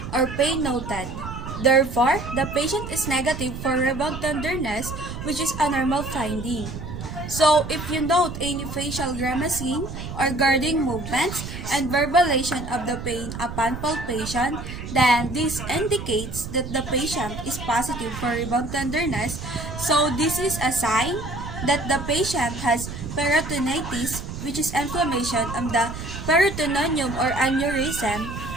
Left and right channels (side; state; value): right; noise; rumble, 8 dB below the sound